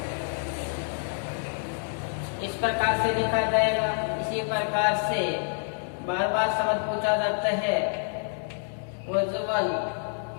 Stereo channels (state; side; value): silent; right; 57 dB below the other